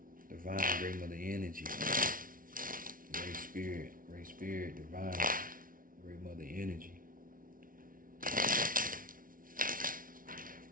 Divine Great Mother Energy. Great Spirit, Divine Great Mother Energy.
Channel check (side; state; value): left; late; 0.40 ms